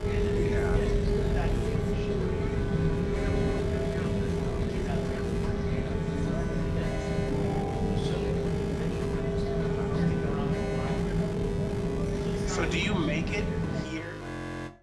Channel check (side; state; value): both; identical; correlation 1.00